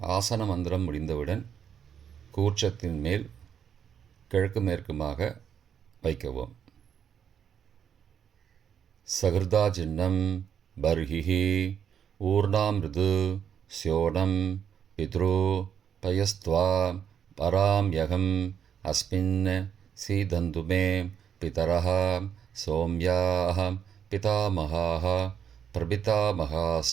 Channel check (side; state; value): left; quieter; 8.3 dB